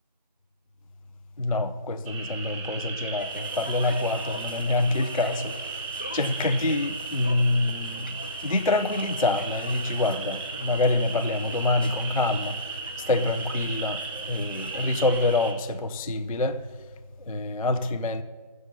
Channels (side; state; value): both; inverted; correlation -0.37